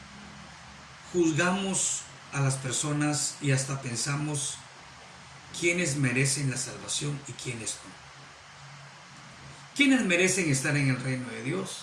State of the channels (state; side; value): identical; both; correlation 1.00